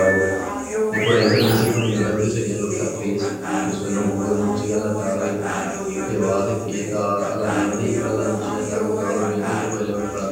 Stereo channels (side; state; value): both; identical; correlation 1.00